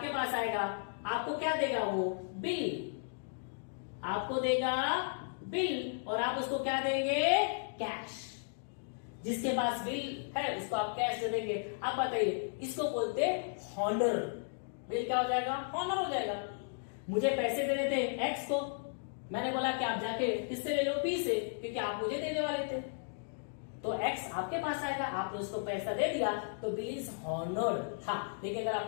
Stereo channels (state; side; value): silent; right; digital silence